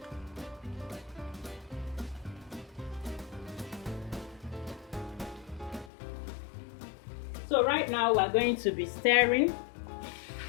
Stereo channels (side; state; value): right; drops out; at 5.9 s